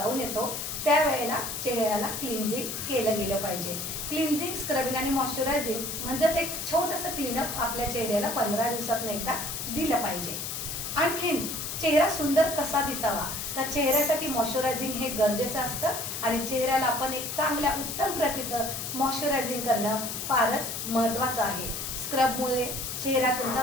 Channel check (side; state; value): left; noise; hiss, 5 dB below the sound